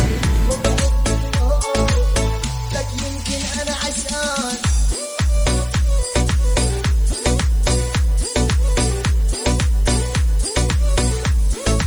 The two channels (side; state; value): left; noise; hiss, 25 dB below the sound